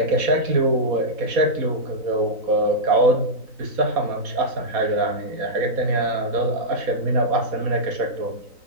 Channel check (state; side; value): late; left; 3.9 ms